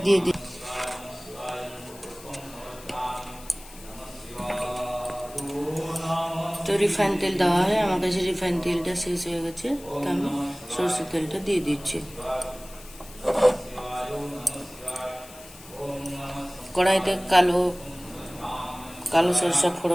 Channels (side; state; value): left; noise; hiss, 19 dB below the sound